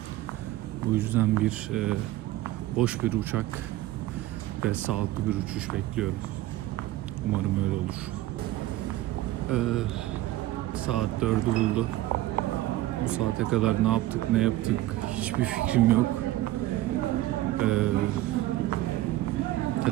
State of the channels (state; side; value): quieter; left; 15.7 dB